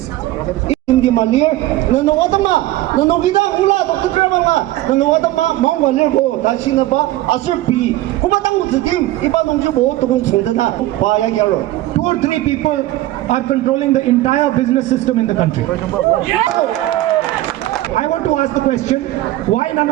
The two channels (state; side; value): quieter; left; 16.1 dB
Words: Hindi malir, nanawatama, nanogida ula, Dr. Kramanga, nanawatama, mangwalir ko, dasina ba, asirpi, kumatang uzikim, iba nung jibo, tungong sundana, paya gyaro. 2 or 3 people are controlling the entire business system in the country. I want to ask the question, why none